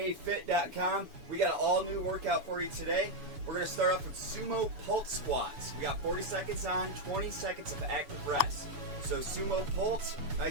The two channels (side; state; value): left; late; 7.0 ms